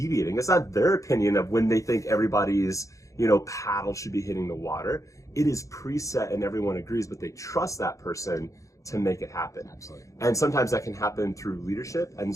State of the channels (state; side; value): late; right; 0.15 ms